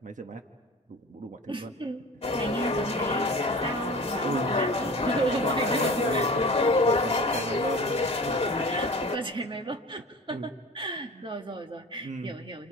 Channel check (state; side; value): normal; both; correlation 0.38